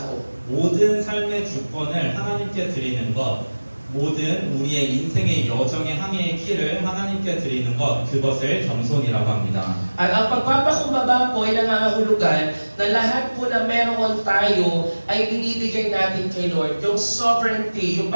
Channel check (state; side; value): inverted; both; correlation -1.00